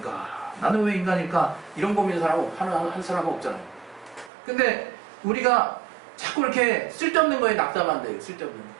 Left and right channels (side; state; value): left; drops out; at 4.3 s